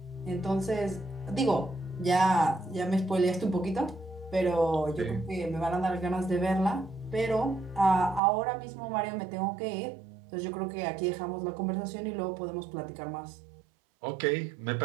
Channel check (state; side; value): drops out; left; at 8.2 s